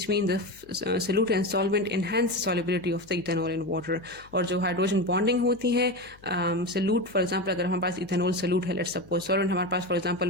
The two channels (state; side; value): noise; left; hum, 26 dB below the sound